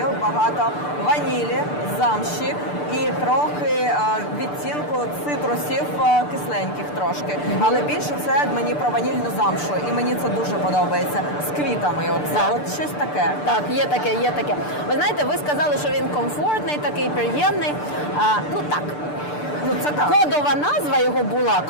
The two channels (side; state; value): right; late; 6.8 ms